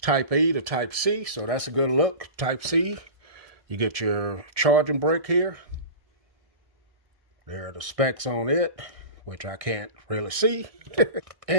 Type E to Type C, so that's a good look. Type C. You get your charging brick here. There are the specs on it, which I can't really see.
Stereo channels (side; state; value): left; late; 1.6 ms